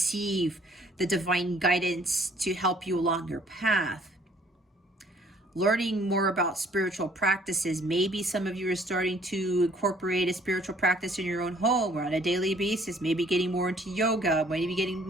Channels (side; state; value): both; normal; correlation 0.59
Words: the divine guidance to help you along your path. Learning more about spiritual practices. Maybe some of you are starting to incorporate a spiritual practice in your own home or on a daily basis. Maybe getting more into yoga, maybe getting